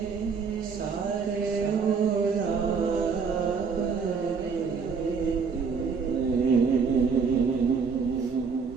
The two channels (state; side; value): quieter; left; 5.5 dB